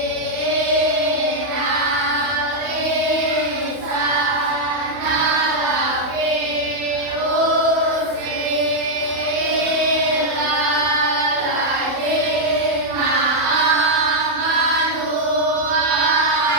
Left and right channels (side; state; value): left; late; 31 ms